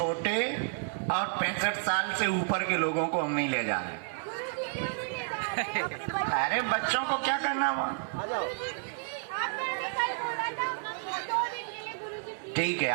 और 65 साल से ऊपर के लोगों को हम नहीं ले जा रहे। अरे बच्चों को क्या करना वहाँ? आ जाओ। ठीक है,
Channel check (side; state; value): left; silent; 56 dB below the other